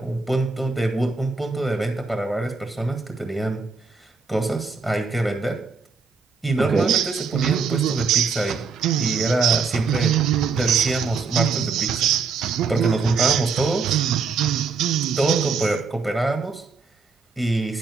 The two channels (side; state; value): left; quieter; 4.8 dB